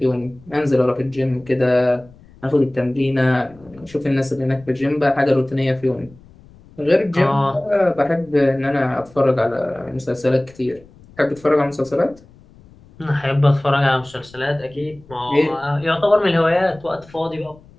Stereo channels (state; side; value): noise; left; rumble, 25 dB below the sound